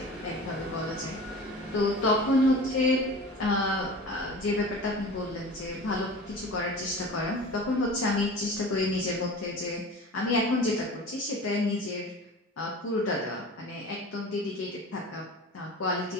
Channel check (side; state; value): both; normal; correlation 0.37